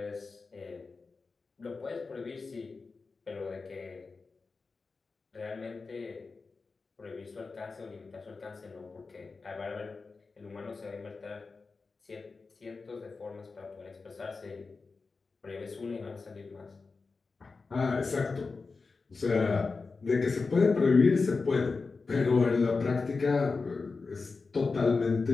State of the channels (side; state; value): right; quieter; 4.3 dB